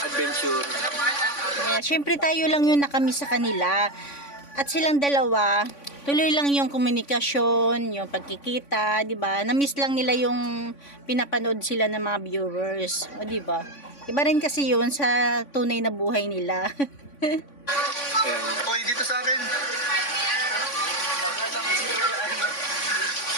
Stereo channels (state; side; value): late; right; 3.5 ms